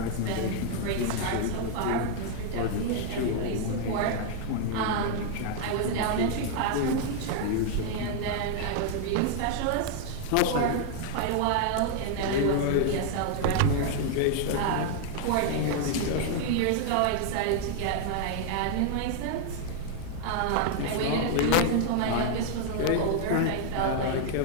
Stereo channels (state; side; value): different; both; correlation 0.00